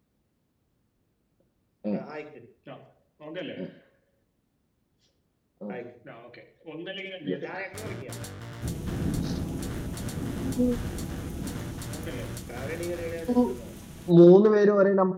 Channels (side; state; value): both; identical; correlation 1.00